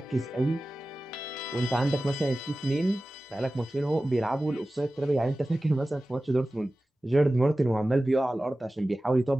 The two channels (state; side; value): normal; both; correlation 0.96